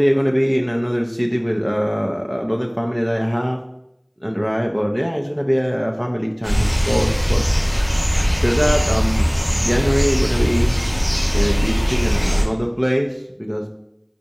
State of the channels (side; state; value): both; identical; correlation 1.00